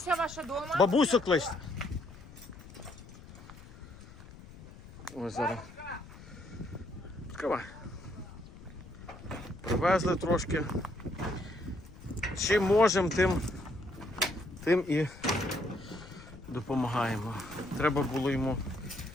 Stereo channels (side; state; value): left; noise; rumble, 17 dB below the sound